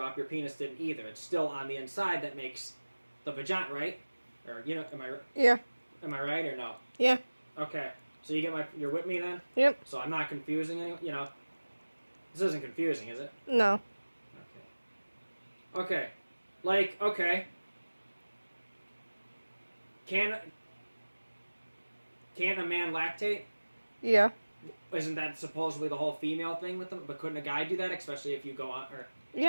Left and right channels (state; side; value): inverted; both; correlation -1.00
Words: your penis didn't either. It's still on the inside that makes the vagina, right? Or, am I... Yeah. Am I right or no? Yeah. Okay. So you're with me then? Yep. So I'm not confusing anyone, This isn't confusing, is it? No. Okay. Okay. Can a man lactate? Yeah. Isn't that supposedly the whole female thing with them? But couldn't a guy do that, especially if you go on?